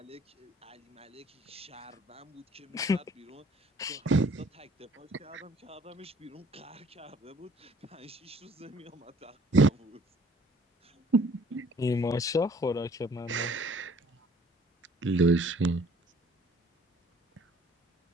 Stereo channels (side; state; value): both; normal; correlation 0.56